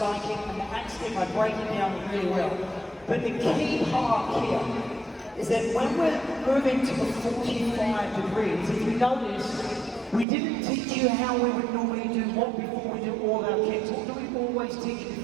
kick, and the axe kick. I break it down really well. But the key part here is that when we're moving to the 45 degrees, if you notice, we didn't teach you how we would normally do what before we do all our kicks. What do we always teach you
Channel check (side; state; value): left; drops out; at 10.2 s